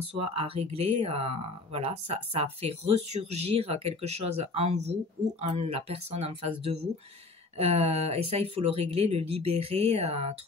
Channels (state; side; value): quieter; right; 3.4 dB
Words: soi à régler, voilà, ça fait ressurgir quelque chose en vous ou en la personne en face de vous. Et ça, il faut le régler, le libérer,